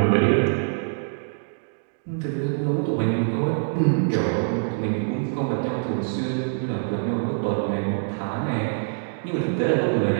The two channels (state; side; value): silent; left; digital silence